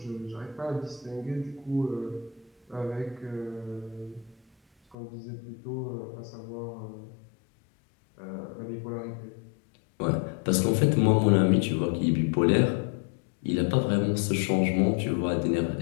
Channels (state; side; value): drops out; right; at 5.0 s